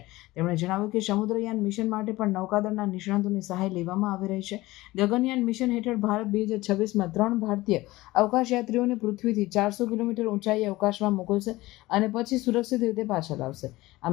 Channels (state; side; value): quieter; right; 18.9 dB